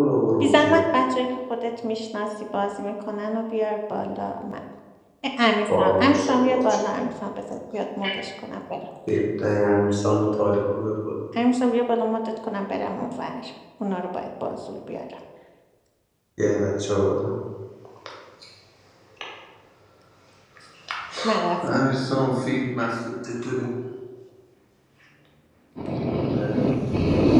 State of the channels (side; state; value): both; identical; correlation 1.00